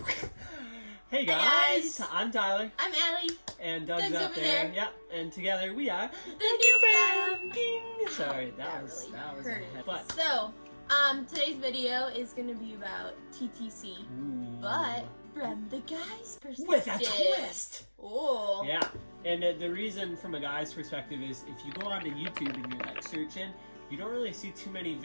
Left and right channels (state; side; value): inverted; both; correlation -1.00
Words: Hey guys, I'm Tyler. I'm Allie. And Doug's up there. Yep. And together we are the new fam. Sorry, that was really a but so today's video is gonna be about TTC, but from the guy's perspective. With a twist. Oh. Yeah. And the reason from a guy's perspective is if you go onto YouTube and you're like searching, you don't really see too many